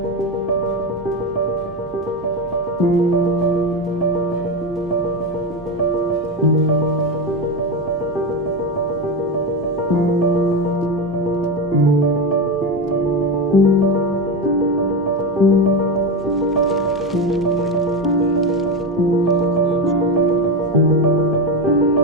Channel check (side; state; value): both; normal; correlation 0.15